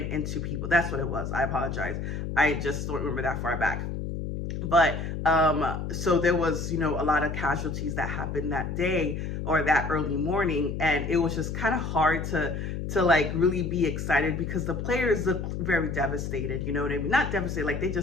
into people? That's what it was. I apologize. I just don't remember that far back. But so there was, a lot of casualties that happened that day or that early morning. And it was just kind of hard to like really be excited because the players looked very devastated. You know what I mean? Not devastated, like they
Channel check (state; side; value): noise; left; hum, 4 dB below the sound